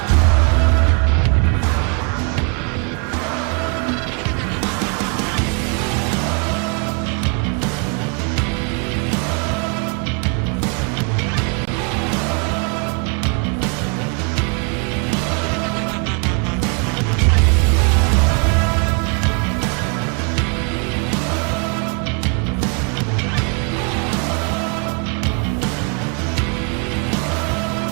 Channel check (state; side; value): quieter; left; 37.4 dB